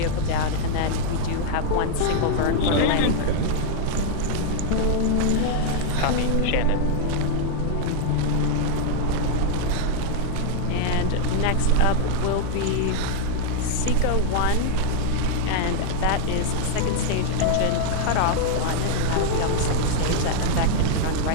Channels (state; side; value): different; both; correlation 0.00